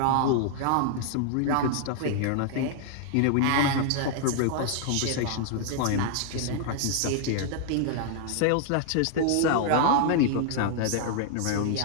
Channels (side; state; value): both; different; correlation 0.00